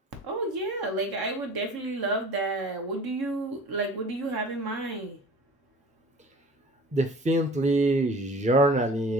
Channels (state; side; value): normal; both; correlation 0.43